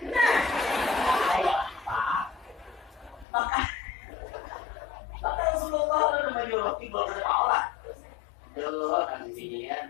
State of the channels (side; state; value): right; drops out; at 3.2 s